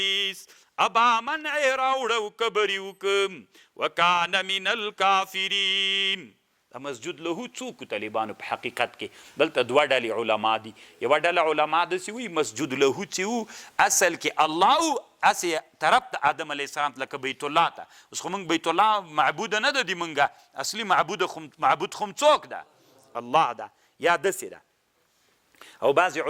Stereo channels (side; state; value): both; identical; correlation 1.00